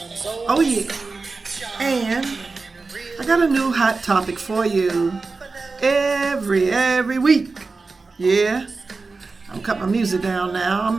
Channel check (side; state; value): left; quieter; 4.0 dB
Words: Oh yeah. And I got a new hot topic for you every week. Yeah. I'm cutting my music down